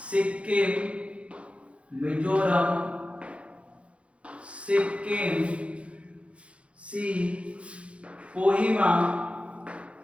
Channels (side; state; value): left; late; 0.061 ms